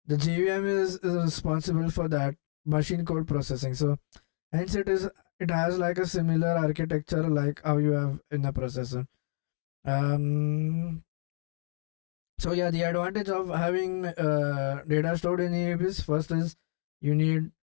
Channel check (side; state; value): right; silent; digital silence